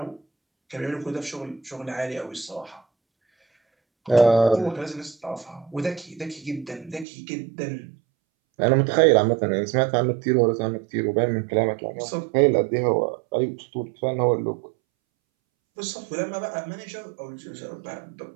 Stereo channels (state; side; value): drops out; left; at 7.1 s